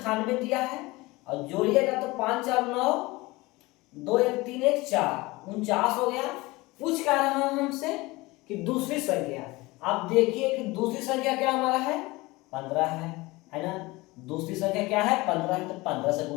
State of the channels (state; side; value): quieter; right; 21.8 dB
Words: दिया है, और जोड़िएगा तो 5 4 9, 2 1 3 1 4, 49 हो गया। पूछ क्या रहा है हमसे कि दूसरी संख्या। आप देखिए कि दूसरी संख्या क्या हमारा है? 15 है ना। दूसरी संख्या क्या है? 15 है, तो 15 से